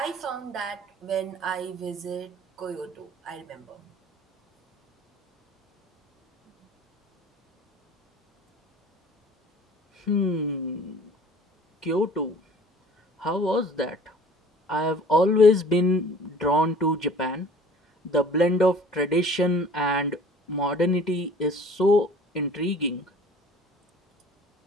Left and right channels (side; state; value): both; normal; correlation 0.49